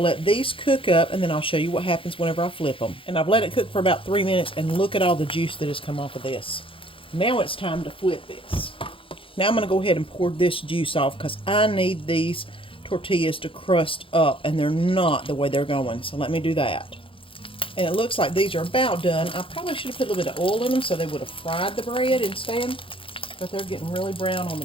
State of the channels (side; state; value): right; late; 0.26 ms